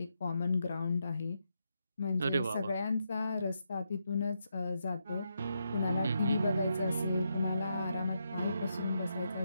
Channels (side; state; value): both; inverted; correlation -0.82